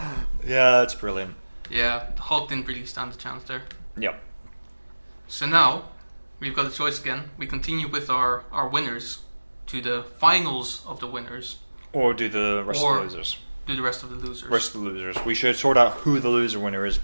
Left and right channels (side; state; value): both; inverted; correlation -1.00